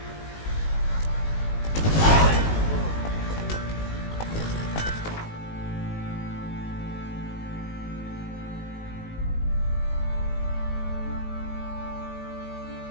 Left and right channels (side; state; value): right; late; 19 ms